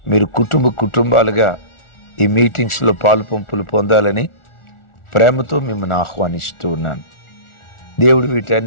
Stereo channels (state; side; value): late; right; 1.4 ms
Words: మీరు కుటుంబాలుగా ఈ మీటింగ్స్లో పాలుపంపులు పొందాలని ప్రేమతో మిమ్మల్ని ఆహ్వానిస్తూ ఉన్నాను. దేవుడు